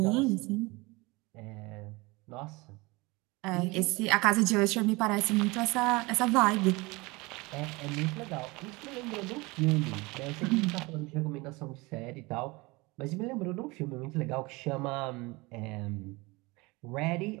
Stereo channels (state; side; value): quieter; left; 24.2 dB